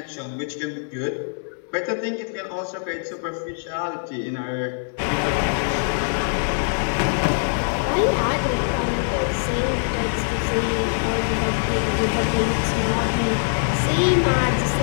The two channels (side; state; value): right; silent; digital silence